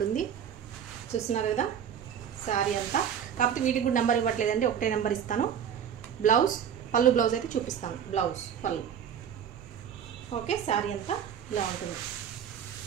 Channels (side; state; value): left; quieter; 8.5 dB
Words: చూస్తున్నారు కదా శారీ అంతా. కాకపోతే వీటికి కూడా నెంబర్ ఇవ్వట్లేదండి, ఒకటే నెంబర్ ఇస్తాను. బ్లౌజ్, పళ్ళు బ్లౌజ్ అయితే చూపిస్తాను. బ్లౌజ్, పళ్ళు. ఓకే, శారీ అంతా ఇలా ఉంటుంది.